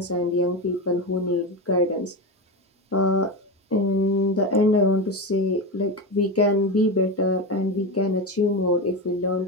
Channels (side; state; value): both; normal; correlation 0.18